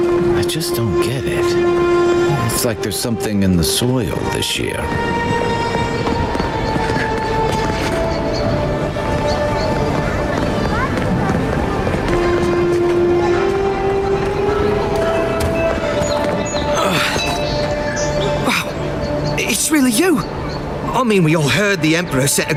I just don't get it. It's like there's something in the soil this year. Wow, it's really you. I mean, we all heard the Emperor sent a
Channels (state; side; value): identical; both; correlation 1.00